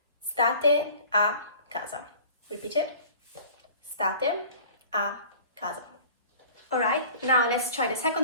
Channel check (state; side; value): inverted; both; correlation -0.46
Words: state a casa. Repeat it. State a casa. Alright, now let's try the